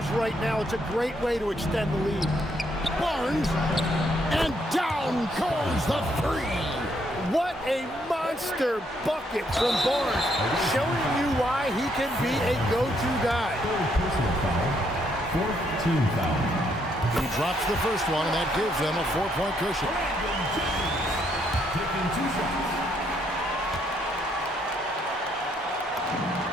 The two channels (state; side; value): normal; both; correlation 0.72